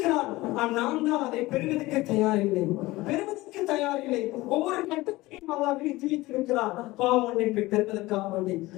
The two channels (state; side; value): quieter; right; 19.5 dB